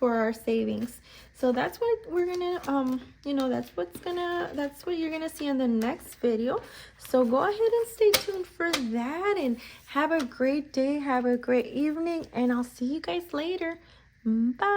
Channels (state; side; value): identical; both; correlation 1.00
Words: our savings. So that's what we're gonna you know, that's what you're gonna see in the next video. So go ahead and stay tuned for that, and have a great day, have a great evening, and I'll see you guys later.